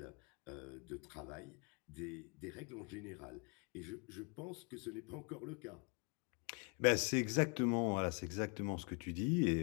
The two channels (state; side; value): quieter; right; 33.6 dB